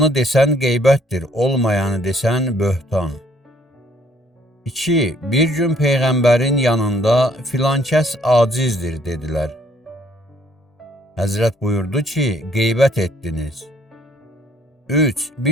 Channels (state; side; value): normal; both; correlation 0.63